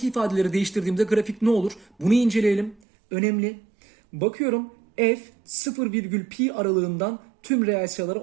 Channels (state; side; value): drops out; left; at 2.8 s